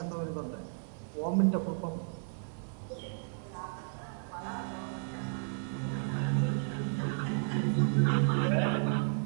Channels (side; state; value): left; silent; digital silence